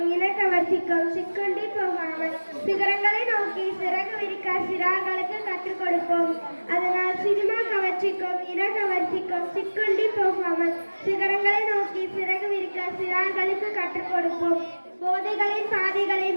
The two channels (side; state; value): both; inverted; correlation -1.00